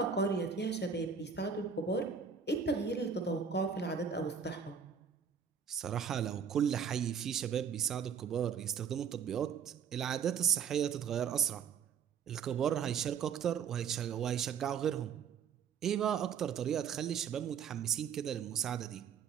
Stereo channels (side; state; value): left; quieter; 6.9 dB